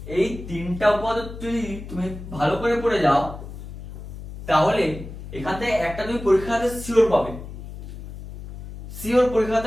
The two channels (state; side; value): noise; left; hum, 11 dB below the sound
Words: এই তিনটা উপপাদ্য যদি তুমি ভালো করে পড়ে যাও, তাহলে এখান থেকে একটা তুমি পরীক্ষাতে শিওর পাবে, শিওর